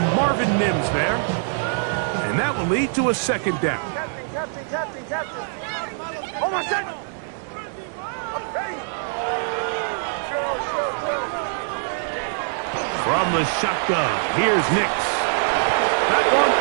Marvin Mims there. And that will lead to a second down. Captain. Oh, my son. Ready. Chill. From the shotgun, here's Nix. That one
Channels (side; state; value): left; silent; digital silence